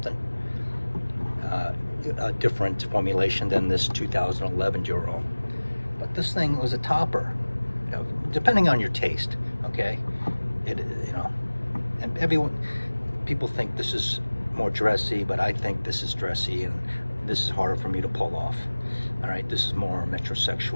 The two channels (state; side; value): inverted; both; correlation -1.00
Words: A different formulation than this 2011 Dior Homme, but this thing was a topper, you know, depending on your taste. Okay, you know, and people think this is more dressy, but I think this is dressy, and this is harder for me to pull off. All right, this is more